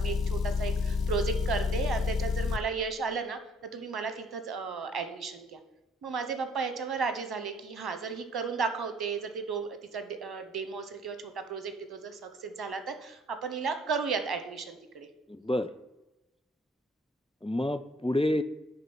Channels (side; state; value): both; normal; correlation 0.59